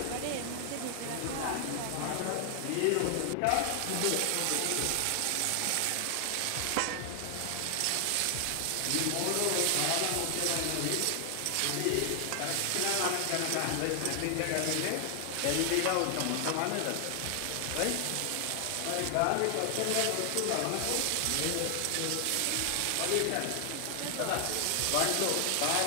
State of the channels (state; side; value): different; both; correlation 0.00